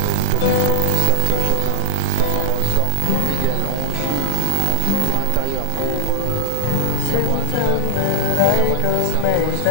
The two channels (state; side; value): different; both; correlation -0.03